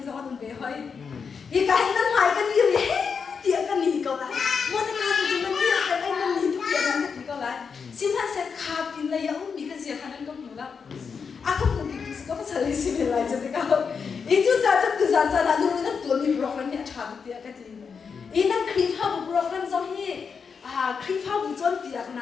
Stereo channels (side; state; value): right; quieter; 5.9 dB